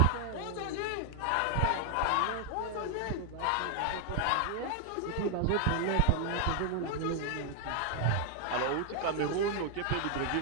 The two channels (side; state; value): both; different; correlation 0.00